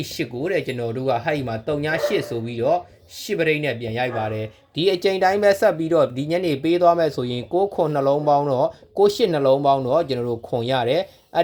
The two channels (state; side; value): identical; both; correlation 1.00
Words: 10ကိုတဲ့ကျွန်တော်တို့ကဟဲ့ဒီမှာ3ည8ဆိုပြီးတော့10ပရိတ်နဲ့ပြန်ရိုက်ပါတယ်ဒီအကြိမ်တိုင်းပဲဆက်ပြီးတော့ဒီညနေပေးသွားမယ်ဆိုရင်6ခွန်နှလုံးပေါင်းတော့8နှလုံးပေါင်းတော့ကျွန်တော်တို့ခွန်ရတယ်အဲ